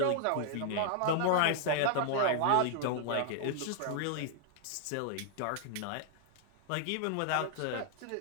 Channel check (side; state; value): both; different; correlation 0.00